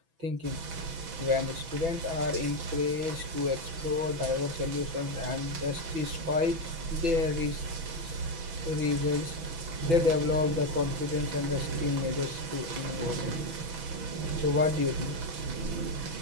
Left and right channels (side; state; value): left; late; 6.1 ms